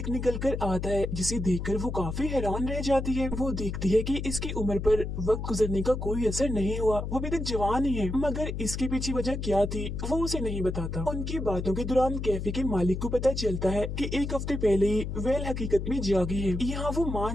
निकल कर आता है, जिसे देखकर वो काफी हैरान रह जाती है। वो देखती है कि इसकी उम्र पर वक्त गुजरने का कोई असर नहीं हुआ, वो अभी तक जवान ही है, मगर इसके पीछे वजह क्या थी वो उसे नहीं बताता। उनकी बातों के दौरान कैफे के मालिक को पता चलता है कि एक हफ्ते पहले ही वेल हकीकत में जागी है। यहाँ वो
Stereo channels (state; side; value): noise; left; hum, 4 dB below the sound